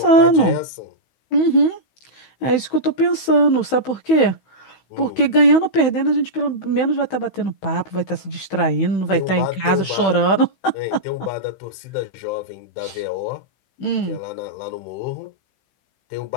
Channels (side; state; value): right; late; 16 ms